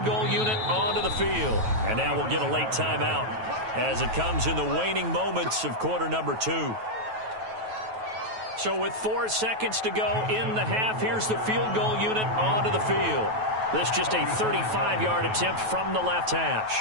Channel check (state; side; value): late; left; 9.2 ms